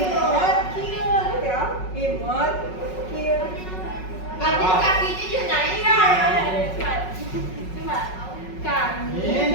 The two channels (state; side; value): late; right; 5.4 ms